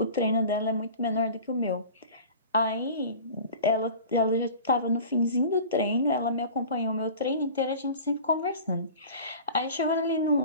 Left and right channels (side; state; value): both; inverted; correlation -0.39